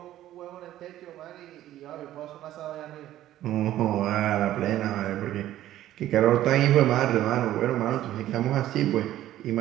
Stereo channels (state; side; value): quieter; left; 13.4 dB